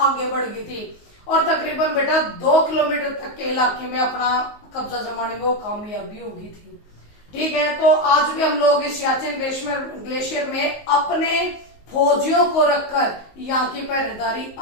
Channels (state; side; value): late; right; 19 ms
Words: बढ़ गई थी और तकरीबन बेटा 2 किलोमीटर तक के इलाके में अपना कब्जा जमाने में वो कामयाबी होगी थी। ठीक है, तो आज भी हम लोग इस सियाचिन ग्लेशियर में अपने फौजियों को रखकर यहाँ की पहरेदारी